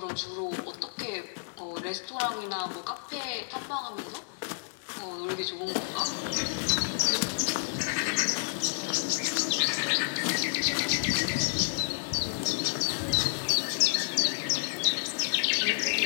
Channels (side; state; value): right; silent; digital silence